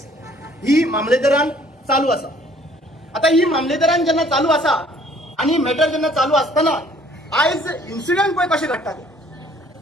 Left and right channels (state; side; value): normal; both; correlation 0.58